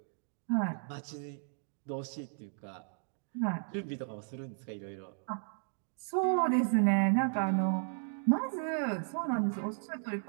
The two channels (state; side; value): silent; left; digital silence